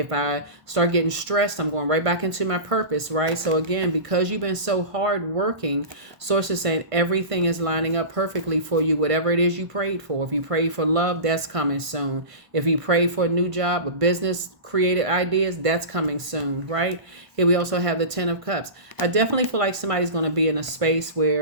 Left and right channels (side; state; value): left; late; 1.5 ms